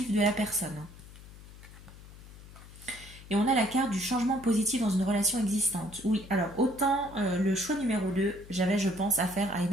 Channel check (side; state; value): left; noise; hum, 18 dB below the sound